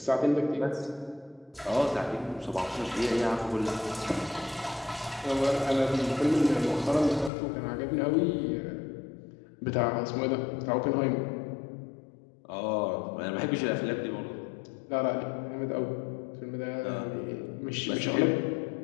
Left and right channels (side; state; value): right; drops out; at 7.3 s